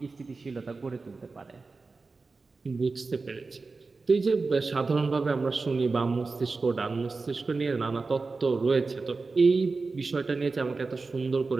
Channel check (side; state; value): left; quieter; 4.0 dB